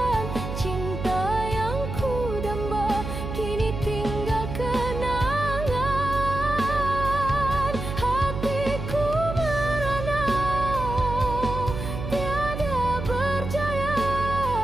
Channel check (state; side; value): noise; right; hum, 6 dB below the sound